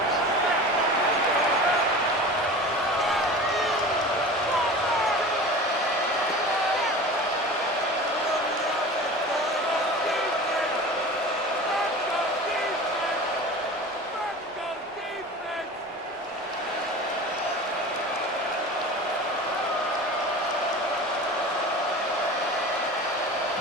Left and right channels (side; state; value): both; normal; correlation 0.35